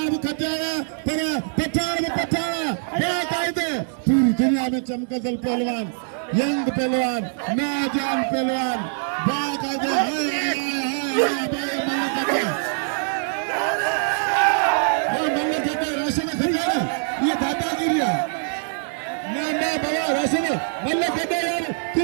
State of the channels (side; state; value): left; silent; digital silence